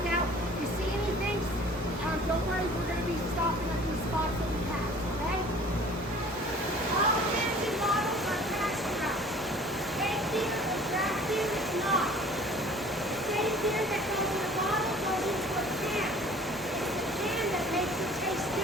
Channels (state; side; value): normal; both; correlation 0.49